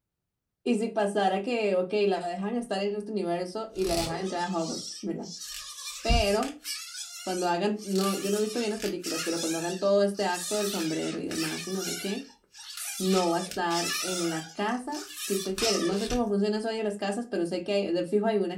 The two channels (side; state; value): both; identical; correlation 1.00